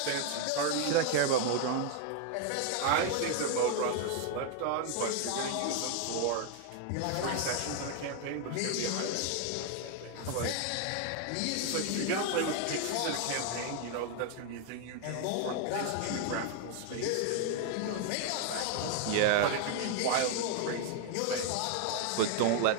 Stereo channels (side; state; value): both; different; correlation 0.00